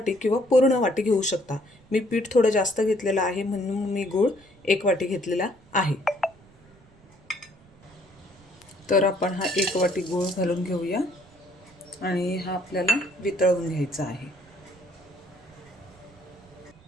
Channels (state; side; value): noise; right; rumble, 27 dB below the sound